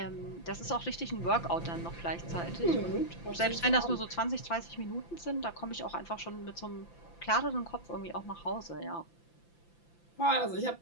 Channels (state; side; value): late; right; 5.9 ms